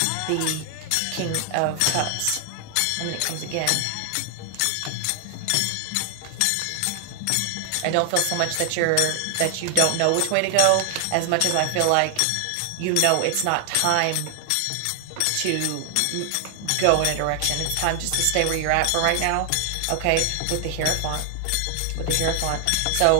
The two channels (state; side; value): different; both; correlation 0.00